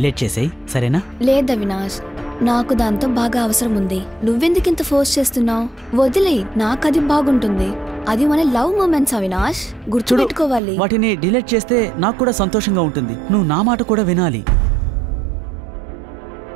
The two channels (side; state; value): left; drops out; at 10.6 s